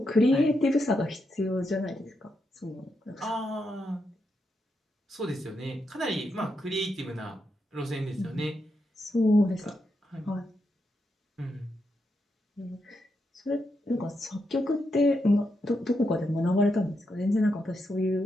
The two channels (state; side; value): normal; both; correlation 0.83